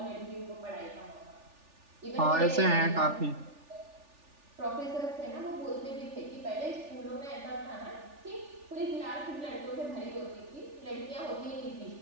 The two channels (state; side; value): late; left; 3.4 ms